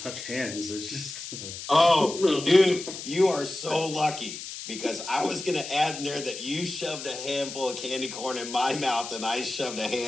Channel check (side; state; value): left; noise; hiss, 9 dB below the sound